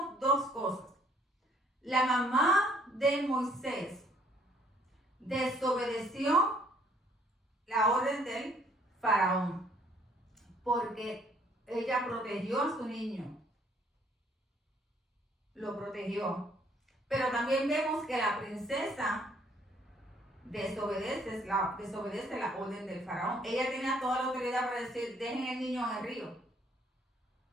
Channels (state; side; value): normal; both; correlation 0.63